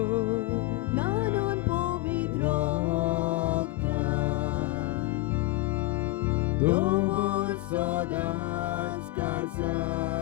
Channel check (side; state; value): right; quieter; 19.1 dB